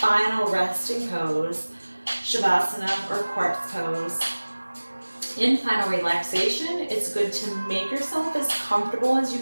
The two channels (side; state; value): both; inverted; correlation -1.00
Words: resting pose, Shavasana or corpse pose. In final relaxation, it's good to make yourself as comfortable as you